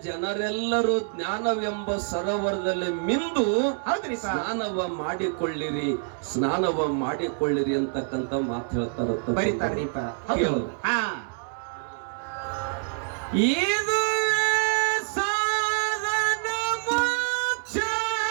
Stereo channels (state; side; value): silent; left; 60 dB below the other